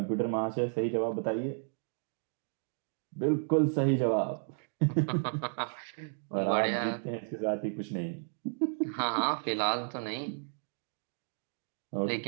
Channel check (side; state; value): left; silent; 56 dB below the other